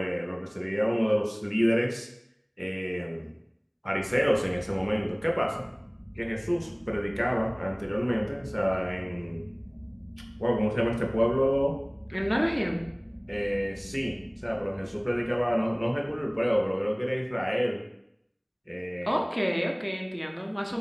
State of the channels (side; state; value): both; identical; correlation 1.00